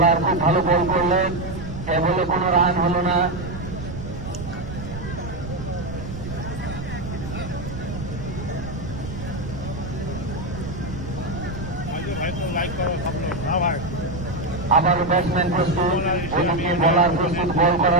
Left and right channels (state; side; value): noise; right; rumble, 9 dB below the sound